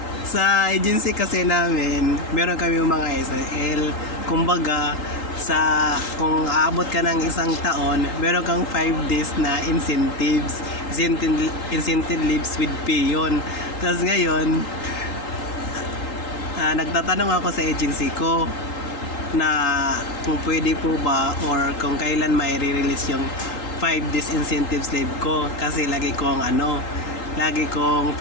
Sa agency kasi namin, meron kami mga SL. Kumbaga, kung aabot ka ng isang taon, meron kang 5 days na incentives. Incentive leaves with pay yun. Tapos ngayon, nagtatanong ako sa agency ko na kung pwede po ba or kung kailan may re-release yung 5 days incentives leave ko, kasi lagi kong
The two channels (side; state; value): right; late; 3.8 ms